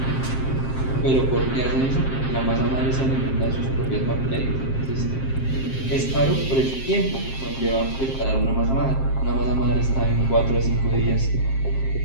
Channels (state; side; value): late; right; 7.5 ms